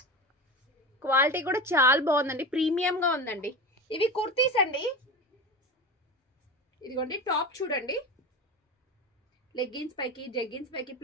క్వాలిటీ కూడా చాలా బాగుందండి, ప్రీమియం గా ఉందండి. ఇవి కుర్తీస్ అండి. ఇదిగోండి టాప్ చూడండి, లెగ్గిన్స్ పైకి జెగ్గిన్స్ పైకి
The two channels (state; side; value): normal; both; correlation 0.26